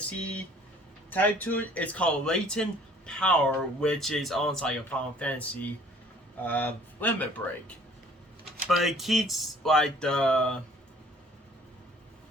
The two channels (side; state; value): both; normal; correlation 0.54